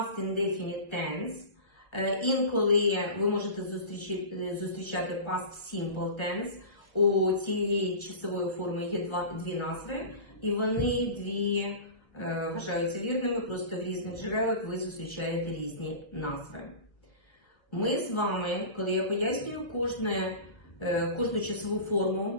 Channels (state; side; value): late; right; 1.3 ms